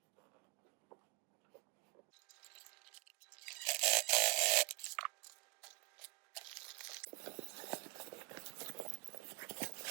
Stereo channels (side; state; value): left; quieter; 27.1 dB